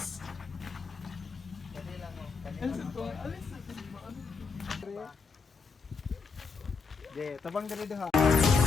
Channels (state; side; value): quieter; right; 4.9 dB